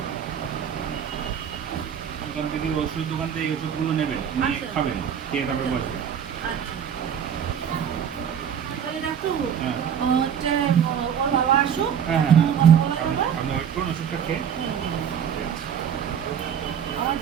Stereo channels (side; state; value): left; quieter; 8.3 dB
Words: ওখান থেকে ওষুধ দোকান থেকে এই ওষুধগুলো নেবেন, নিয়ে আচ্ছা। খাবেন, খেয়ে তারপরে বসবেন। আচ্ছা, তাহলে ডাক্তারবাবু হ্যাঁ হচ্ছে ওর বাবা আসুক, হ্যাঁ হ্যাঁ, কথা বলা যাবে। আপনি ওয়েট করুন, ওষুধটা খেয়ে। হুম, হুম। ঠিক আছে। আমার